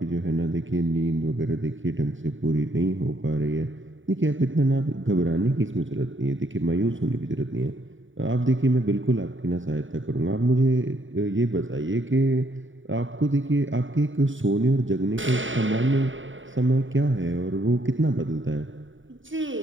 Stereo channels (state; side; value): late; left; 0.56 ms